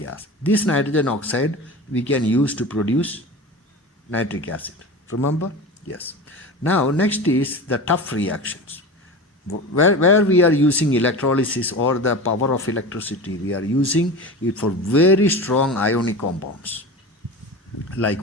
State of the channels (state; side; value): normal; both; correlation 0.30